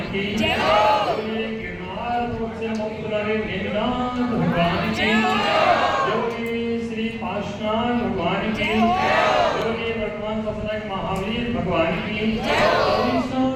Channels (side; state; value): both; identical; correlation 1.00